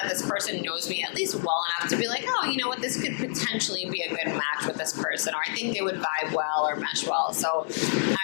this person knows me at least well enough to be like, oh, you know what, this could potentially be a good match with this person, or I think they would vibe well or mesh well. So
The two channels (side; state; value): right; silent; digital silence